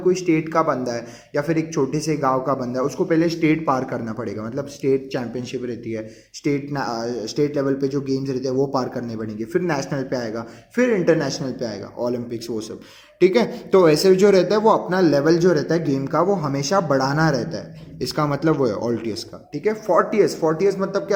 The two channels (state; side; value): identical; both; correlation 1.00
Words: स्टेट का बंदा है या फिर एक छोटे से गांव का बंदा है, उसको पहले स्टेट पार करना पड़ेगा. मतलब स्टेट चैंपियनशिप रहती है, स्टेट लेवल पे जो गेम्स रहते हैं वो पार करने पड़ेंगे, फिर नेशनल पे आएगा, फिर इंटरनेशनल पे आएगा, ओलंपिक्स वो सब. ठीक है. तो ऐसे जो रहता है वो अपना लेवल जो रहता है गेम का वो हमेशा बढ़ाना रहता है. इसका मतलब वो है ऑल्टियस का. ठीक है. फोर्टियस मतलब